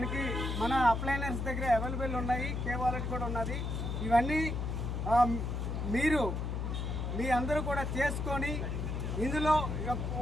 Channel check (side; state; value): left; noise; hum, 2 dB below the sound